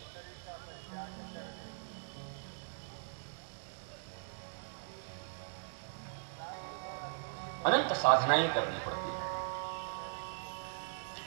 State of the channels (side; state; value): left; silent; digital silence